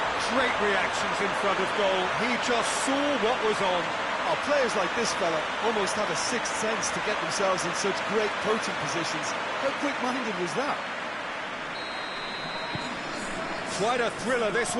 Great reactions in front of goal. He just saw what was on. Oh, players like this fella almost have a sixth sense to get themselves in such great coaching positions. How quick-minded was that? Quite a thriller this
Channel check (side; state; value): both; identical; correlation 1.00